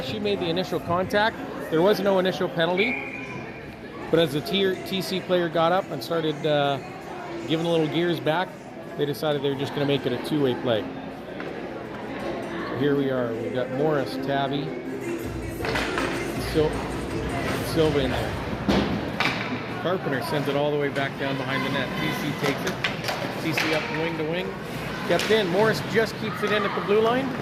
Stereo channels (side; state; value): both; identical; correlation 1.00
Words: she made the initial contact. There was no initial penalty. But as the TC player got up and started giving a little gears back, they decided they were just going to make it a 2-way play. So here we are. We've got Morris, Tabby, Silva in there. Carpenter sends it all the way back down behind the net. TC takes it. TC up wing to wing. Kept in. Morris just keeps it in at the blue line.